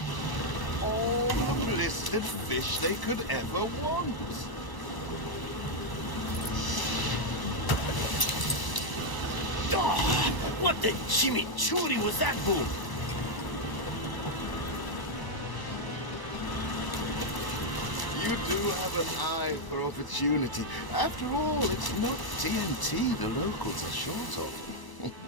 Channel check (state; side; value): late; right; 1.0 ms